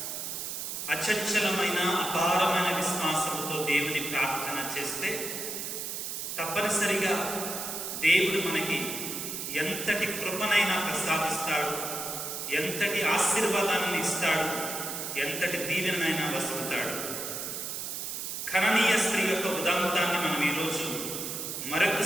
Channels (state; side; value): noise; right; hiss, 5 dB below the sound